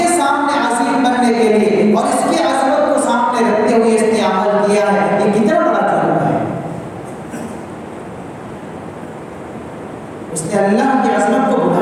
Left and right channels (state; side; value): identical; both; correlation 1.00